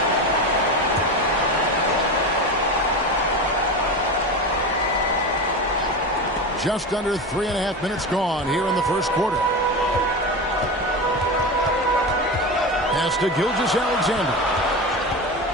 just under 3.5 minutes gone here in the first quarter. Pass to Gilgeous-Alexander.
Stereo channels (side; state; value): both; normal; correlation 0.23